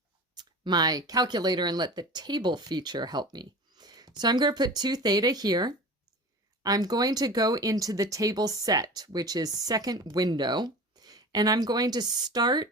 my calculator and let the table feature help me. So I'm going to put 2 theta here. I'm going to go into the table set, which is second window, and I'm going to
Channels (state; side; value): normal; both; correlation 0.35